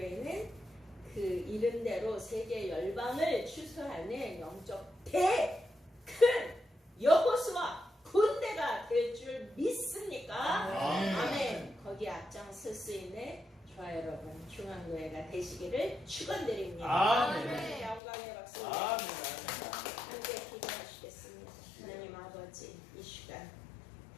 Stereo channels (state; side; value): drops out; right; at 18.0 s